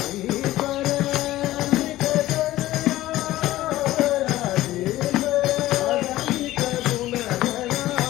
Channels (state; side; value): quieter; right; 15.8 dB